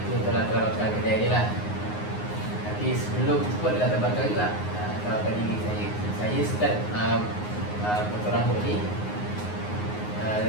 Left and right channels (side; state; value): right; late; 9.6 ms